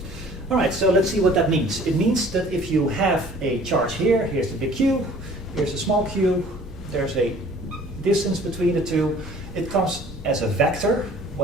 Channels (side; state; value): both; normal; correlation 0.51